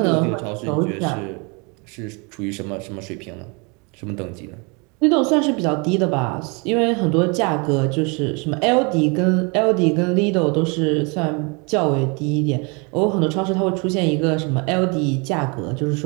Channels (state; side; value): quieter; left; 31.4 dB